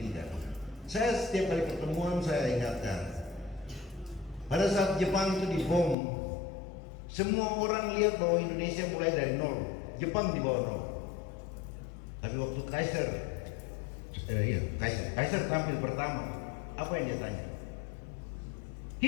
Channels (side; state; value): right; drops out; at 6.0 s